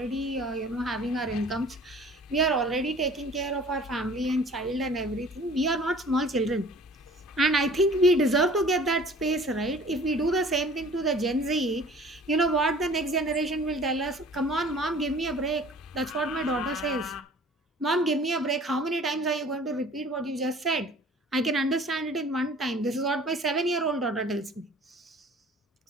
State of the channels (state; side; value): normal; both; correlation 0.49